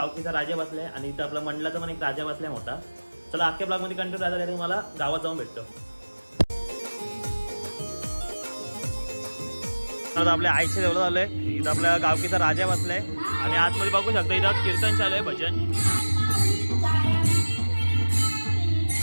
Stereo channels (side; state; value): both; inverted; correlation -1.00